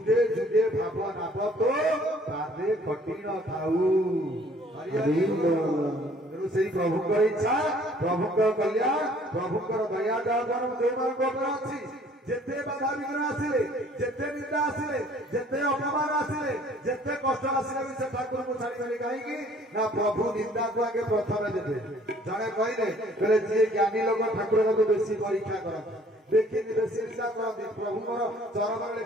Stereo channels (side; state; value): both; normal; correlation 0.57